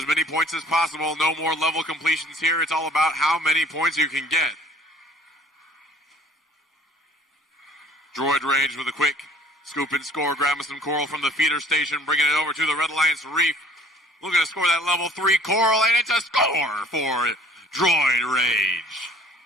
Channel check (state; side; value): normal; both; correlation 0.52